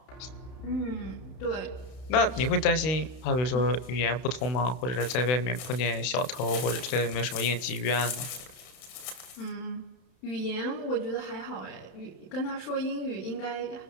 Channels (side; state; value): right; late; 31 ms